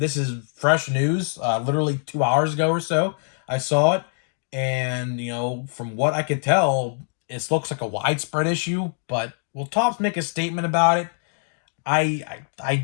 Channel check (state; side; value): silent; right; digital silence